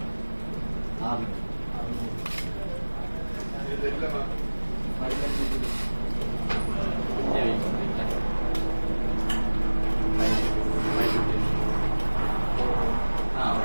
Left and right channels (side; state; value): both; inverted; correlation -1.00